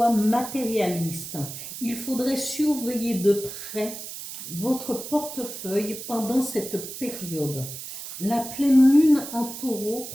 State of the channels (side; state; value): right; noise; hiss, 10 dB below the sound